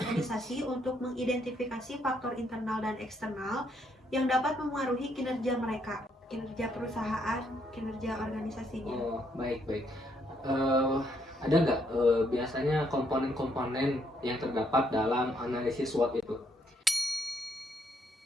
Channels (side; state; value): both; normal; correlation 0.72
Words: untuk mengidentifikasi faktor internal dan eksternal yang dapat mempengaruhi kinerja mereka, kinerja perusahaan, kinerja organisasinya. Oh, baik. Ada nggak biasanya komponen-komponen yang terdapat dalam analisis SWOT itu?